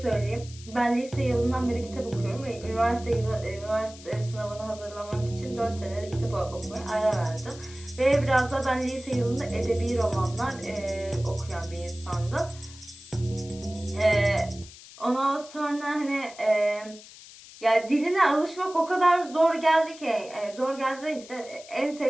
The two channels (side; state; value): left; noise; hiss, 18 dB below the sound